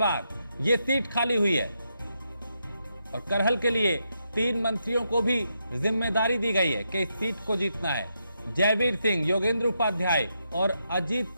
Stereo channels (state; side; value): inverted; both; correlation -0.82